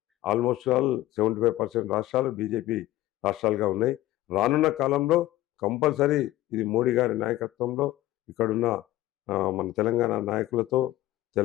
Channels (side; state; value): right; quieter; 15.7 dB